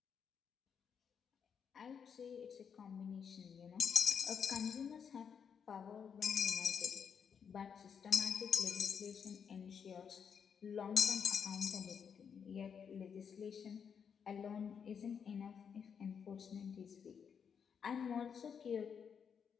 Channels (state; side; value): quieter; right; 7.0 dB